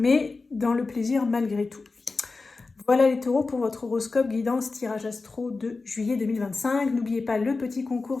dans le plaisir malgré tout. Voilà les taureaux pour votre horoscope guidance tirage astro de juillet 2025. N'oubliez pas le petit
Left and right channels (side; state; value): right; quieter; 3.9 dB